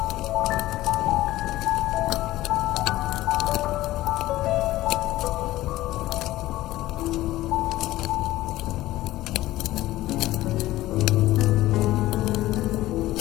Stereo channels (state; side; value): quieter; right; 16.3 dB